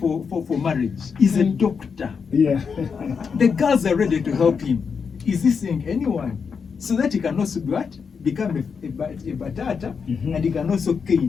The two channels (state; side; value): quieter; right; 5.9 dB